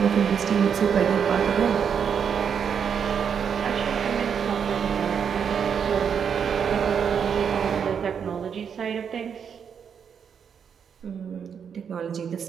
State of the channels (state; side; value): quieter; left; 7.3 dB